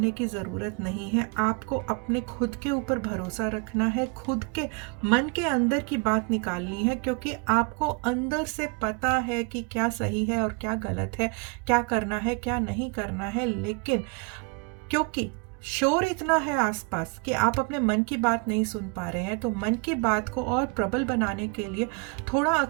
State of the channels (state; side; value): quieter; left; 31.5 dB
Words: की ज़रूरत नहीं है, आपको अपने खुद के ऊपर भरोसा रखना है, खुद के मन के अंदर की बात निकालनी है, क्योंकि आपको अंदर से पता है कि क्या सही है और क्या गलत है, क्या करना है क्या नहीं करना है। लेकिन क्योंकि शोर इतना है आसपास कि आप अपने मन की बात नहीं सुन पा रहे हैं, तो मन की बात को और प्रबल बनाने के लिए थोड़ा